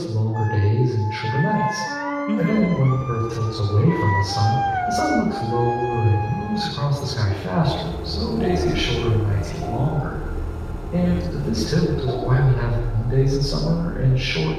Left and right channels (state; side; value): identical; both; correlation 1.00